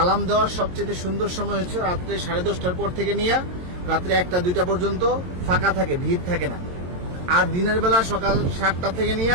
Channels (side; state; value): left; late; 22 ms